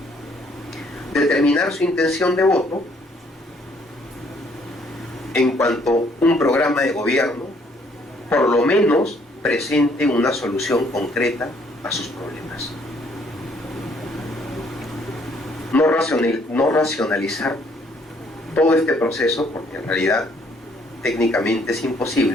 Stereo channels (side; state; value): both; normal; correlation 0.65